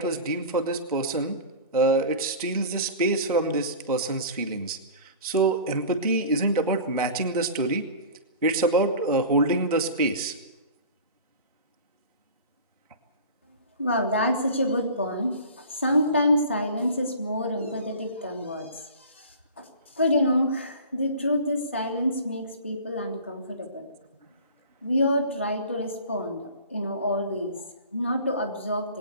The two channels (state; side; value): inverted; both; correlation -0.38